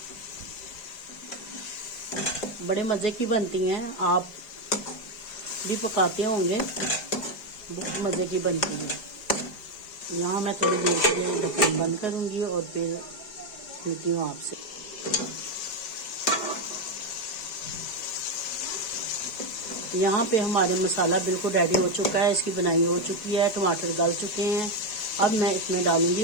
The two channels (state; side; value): late; right; 4.9 ms